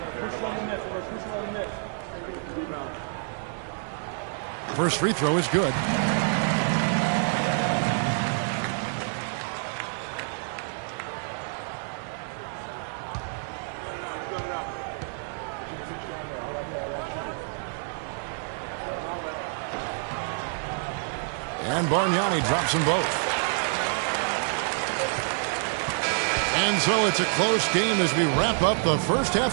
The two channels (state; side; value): silent; left; 60 dB below the other